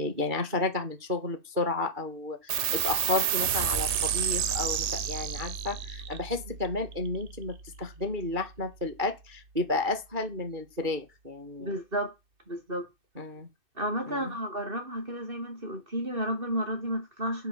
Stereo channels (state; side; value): late; left; 2.6 ms